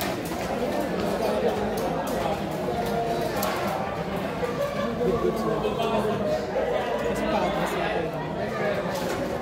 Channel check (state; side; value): identical; both; correlation 1.00